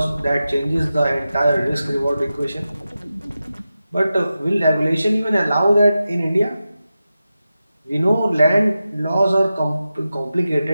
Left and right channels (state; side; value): inverted; both; correlation -0.92